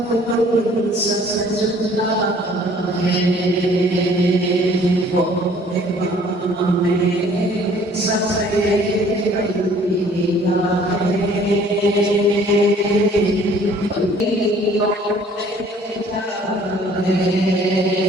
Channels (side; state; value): both; normal; correlation 0.55